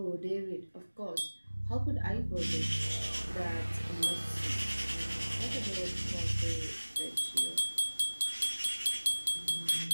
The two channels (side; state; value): both; inverted; correlation -1.00